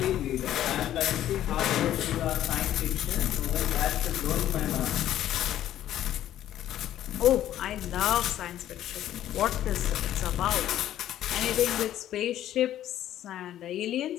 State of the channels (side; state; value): right; quieter; 12.1 dB